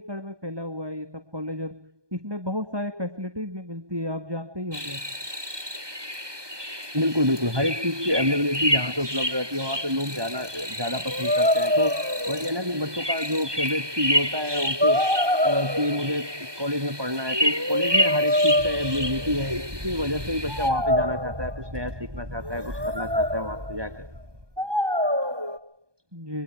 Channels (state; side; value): late; left; 1.2 ms